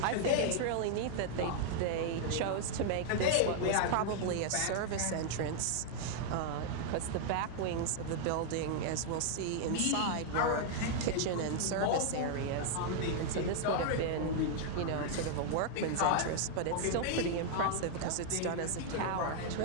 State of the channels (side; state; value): both; different; correlation 0.00